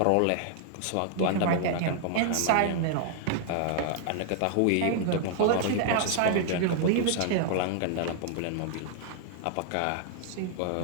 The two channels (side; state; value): both; different; correlation -0.01